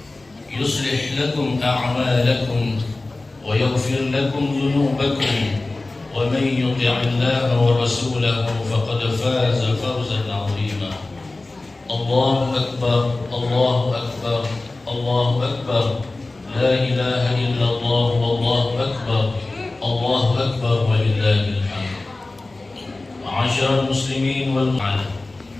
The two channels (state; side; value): quieter; right; 3.1 dB